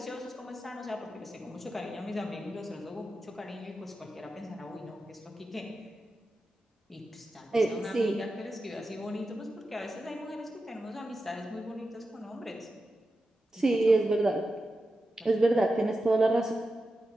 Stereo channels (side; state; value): both; normal; correlation 0.91